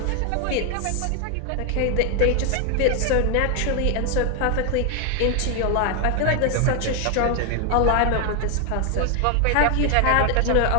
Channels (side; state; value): both; different; correlation 0.01